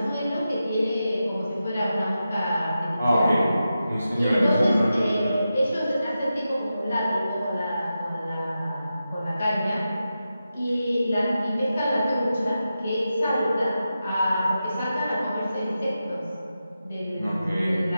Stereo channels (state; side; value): inverted; both; correlation -0.90